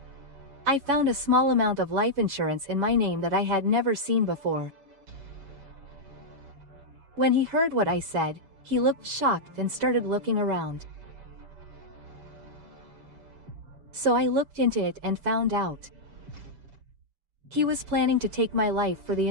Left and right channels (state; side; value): late; left; 7.2 ms